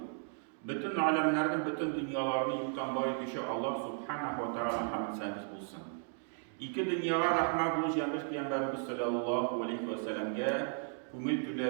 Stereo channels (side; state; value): left; silent; 54 dB below the other